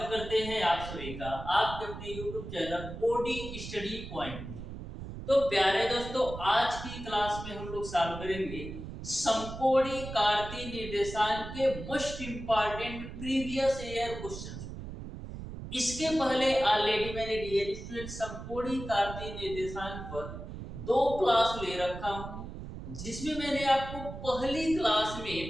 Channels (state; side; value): noise; right; rumble, 10 dB below the sound